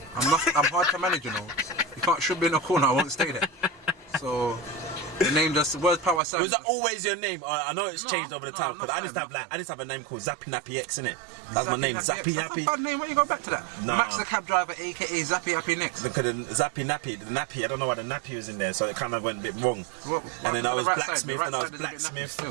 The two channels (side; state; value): left; drops out; at 6.2 s